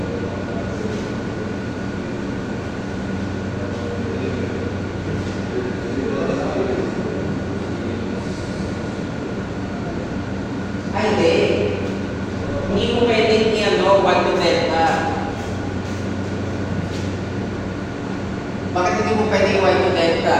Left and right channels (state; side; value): identical; both; correlation 1.00